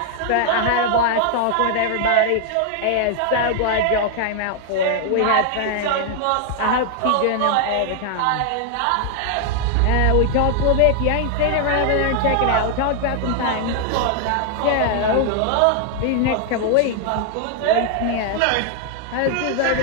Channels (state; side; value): different; both; correlation 0.00